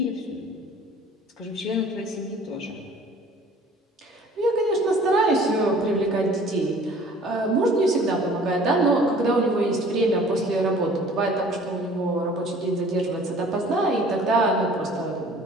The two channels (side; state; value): both; normal; correlation 0.50